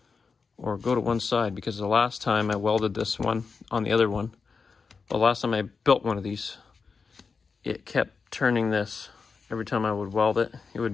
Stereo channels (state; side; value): quieter; right; 5.0 dB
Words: or go to one side, because the last time I welded this one on the other one, the last time I built one of these, it kept turning this. Every time I would weld it, it